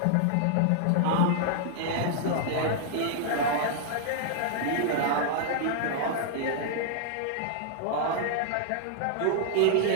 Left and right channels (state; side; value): different; both; correlation -0.01